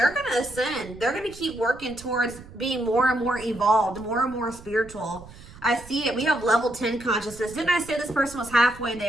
ascend. They're gonna keep working towards being more and more evolved, more and more spiritual. I see it. We have level 10 consciousness. Didn't I say this person was halfway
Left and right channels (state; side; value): noise; right; rumble, 18 dB below the sound